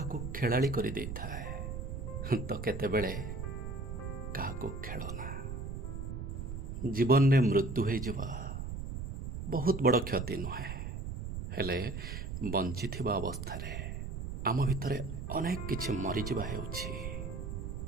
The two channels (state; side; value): noise; right; rumble, 6 dB below the sound